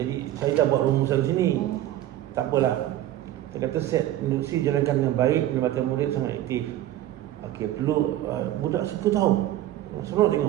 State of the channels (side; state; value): left; quieter; 13.5 dB